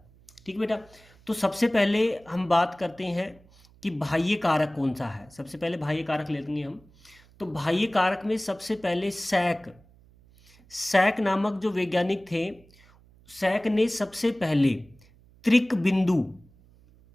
ठीक बेटा, तो सबसे पहले हम बात करते हैं कि बाह्य कारक कौन सा है। सबसे पहले बाह्य कारक लेंगे हम। तो बाह्य कारक में सबसे पहले सैक नामक जो वैज्ञानिक थे, सैक ने सबसे पहले त्रिक बिंदु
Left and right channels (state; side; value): noise; right; hum, 28 dB below the sound